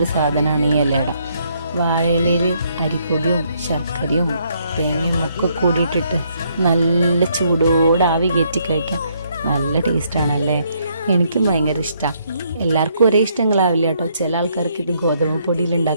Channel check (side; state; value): both; inverted; correlation -0.71